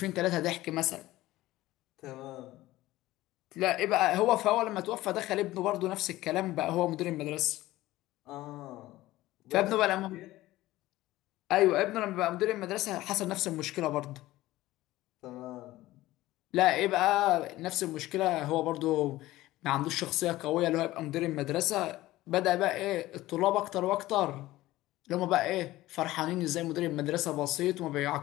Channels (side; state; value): right; quieter; 16.8 dB